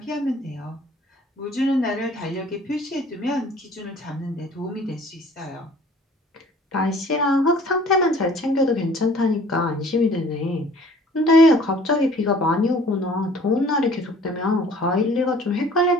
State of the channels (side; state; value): both; normal; correlation 0.52